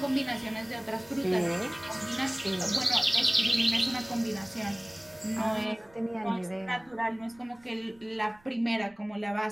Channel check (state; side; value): noise; right; rumble, 29 dB below the sound